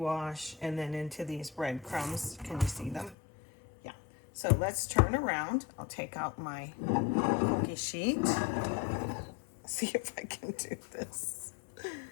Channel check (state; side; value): drops out; right; at 3.2 s